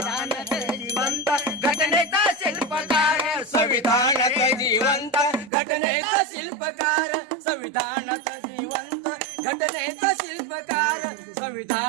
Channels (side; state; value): left; drops out; at 5.5 s